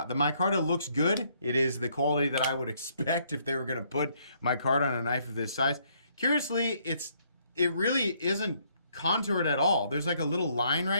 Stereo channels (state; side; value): inverted; both; correlation -0.68